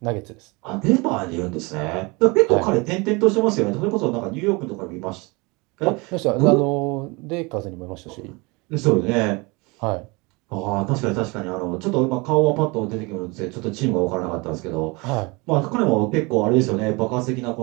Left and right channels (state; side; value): quieter; left; 26.6 dB